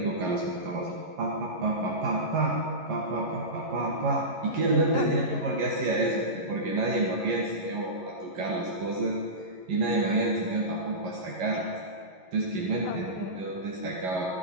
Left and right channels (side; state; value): left; late; 11 ms